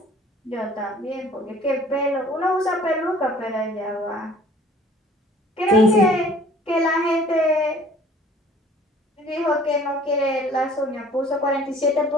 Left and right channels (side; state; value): both; normal; correlation 0.52